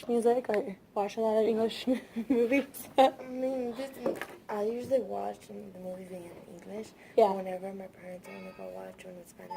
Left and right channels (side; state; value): both; identical; correlation 1.00